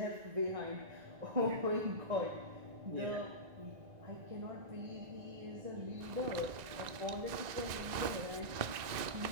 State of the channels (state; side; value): late; left; 1.9 ms